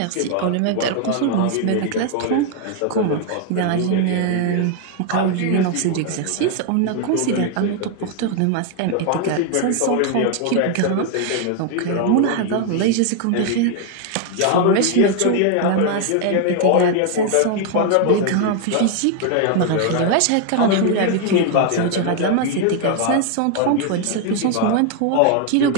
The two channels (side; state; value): both; different; correlation 0.00